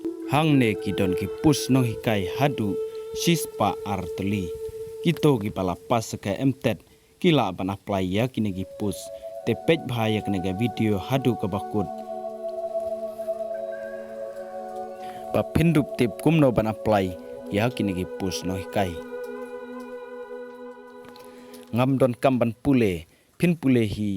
hangne ki don ki push no hikai hadu sispa artli kito ki palapas ka MTET kila ban apply ya kini ki push te page bhaya kene ga video hadu ka bakut pa pindup tip kumno ban apply ya kini ki push no hikai ngam don kam ban pule pin pule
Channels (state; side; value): identical; both; correlation 1.00